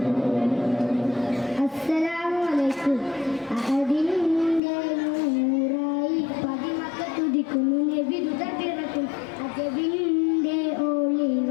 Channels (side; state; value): right; drops out; at 4.6 s